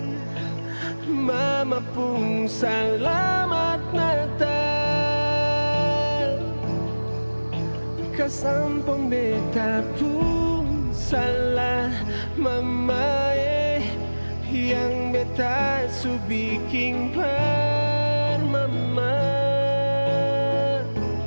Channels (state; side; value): inverted; both; correlation -1.00